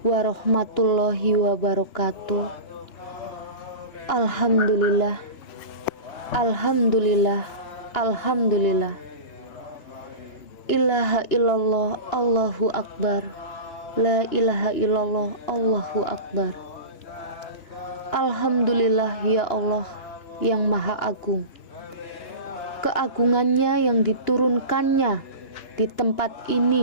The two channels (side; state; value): right; late; 2.9 ms